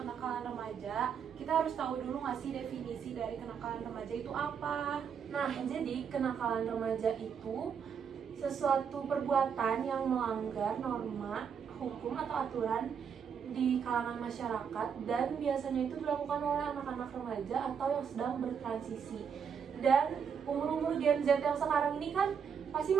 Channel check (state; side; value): quieter; left; 7.1 dB